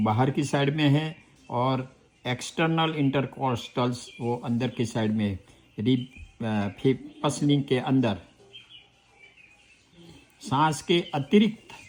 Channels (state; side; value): identical; both; correlation 1.00